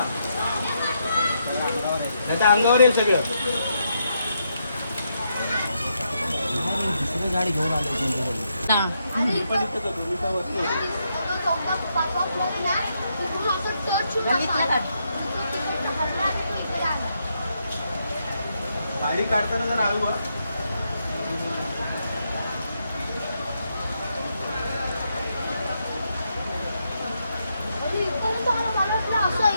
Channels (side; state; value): both; inverted; correlation -0.80